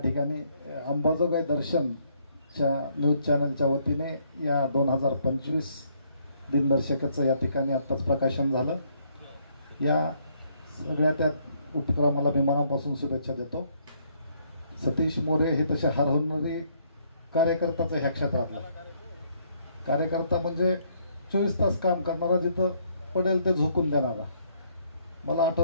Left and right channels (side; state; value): both; inverted; correlation -0.69